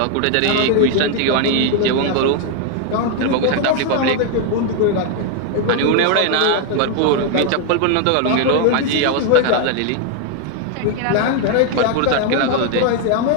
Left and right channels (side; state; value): both; different; correlation 0.01